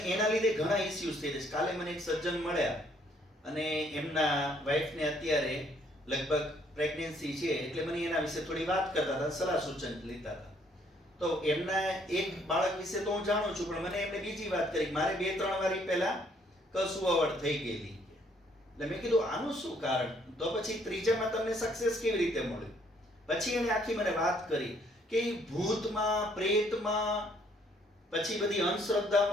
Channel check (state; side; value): normal; both; correlation 0.66